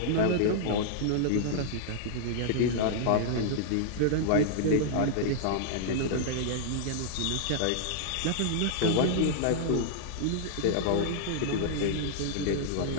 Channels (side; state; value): both; different; correlation -0.01